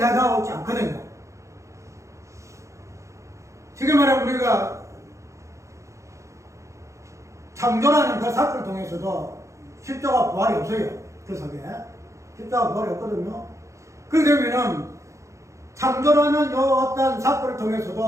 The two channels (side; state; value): left; late; 0.15 ms